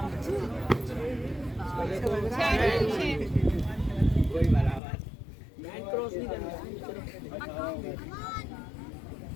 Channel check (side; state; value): right; drops out; at 4.8 s